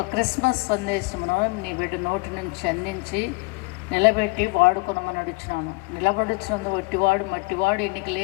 క్రిస్మస్ సందేశమును నీ బిడ్డ నోటి నుంచి అందించి నిలబెట్టి వాడుకొనమని అడుగుచున్నాము. నిలబడుచున్నందు ఒట్టివాడు మట్టివాడు ఎన్నిక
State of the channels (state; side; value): quieter; right; 27.8 dB